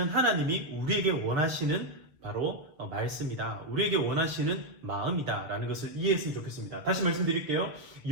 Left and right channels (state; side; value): late; left; 6.7 ms